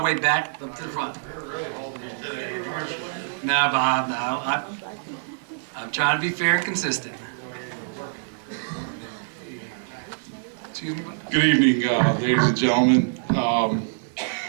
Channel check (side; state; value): left; silent; digital silence